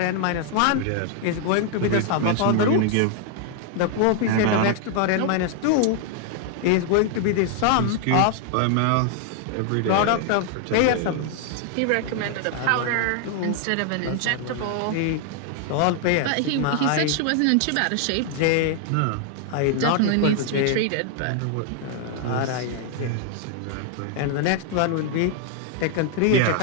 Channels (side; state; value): both; different; correlation 0.00